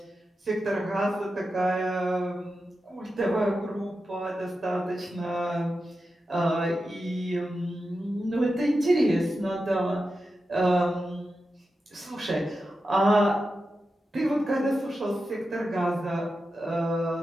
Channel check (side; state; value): both; normal; correlation 0.90